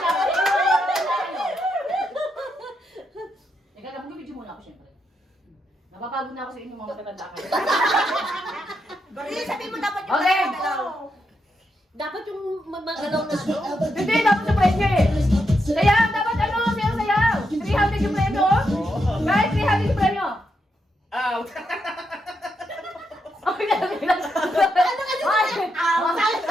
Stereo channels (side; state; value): both; normal; correlation 0.82